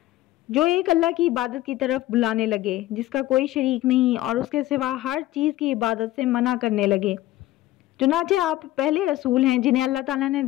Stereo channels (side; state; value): right; quieter; 15.7 dB